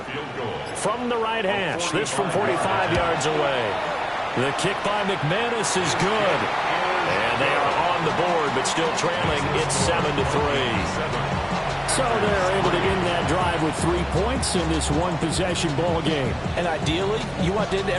From the right hash, this from 45 yards away. The kick by McManus is good. And they are on the board, but still trailing. It's 7-3. So they're able to end that drive with 3 points in this one-possession ball game. And ideally, you want to end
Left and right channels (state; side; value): identical; both; correlation 1.00